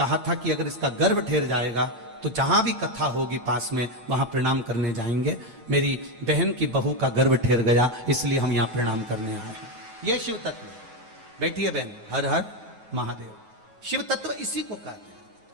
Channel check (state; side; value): late; left; 8.9 ms